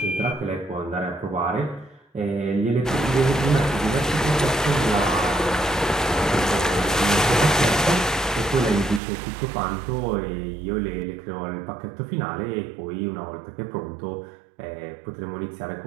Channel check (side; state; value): left; drops out; at 9.0 s